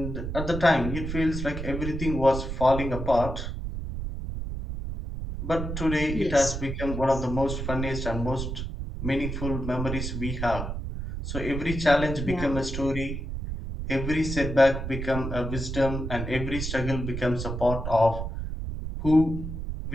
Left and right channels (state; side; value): noise; right; rumble, 5 dB below the sound